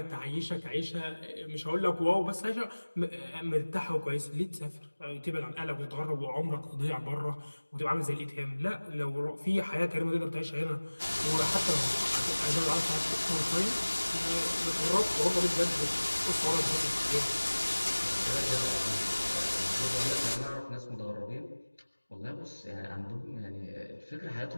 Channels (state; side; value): inverted; both; correlation -1.00